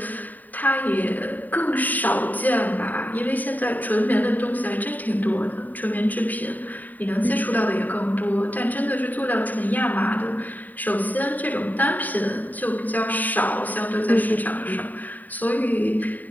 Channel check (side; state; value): right; late; 0.084 ms